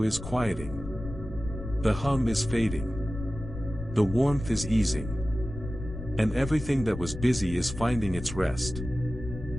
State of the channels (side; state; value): left; noise; rumble, 10 dB below the sound